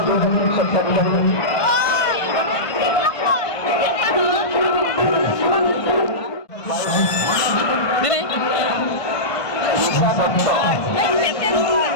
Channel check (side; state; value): right; late; 1.5 ms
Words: বৈজ্ঞানিক সত্য বিষয় ঈশা দত্ত,